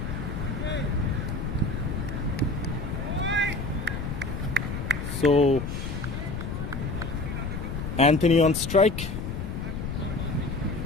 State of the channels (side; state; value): left; noise; rumble, 4 dB below the sound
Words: So Anthony on strike.